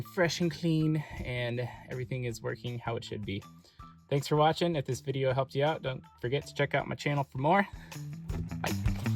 fresh and clean, and everything is working how it should be. Thanks for watching. If this video helped you out, don't forget to check out my channel for more.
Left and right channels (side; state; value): both; identical; correlation 1.00